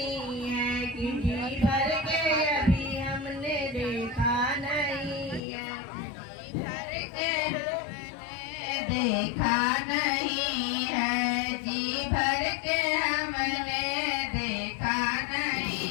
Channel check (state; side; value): drops out; right; at 5.4 s